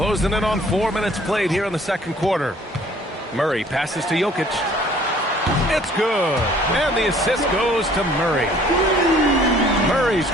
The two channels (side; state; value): both; normal; correlation 0.56